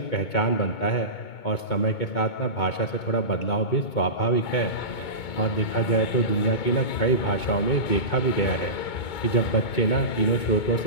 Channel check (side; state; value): right; late; 2.2 ms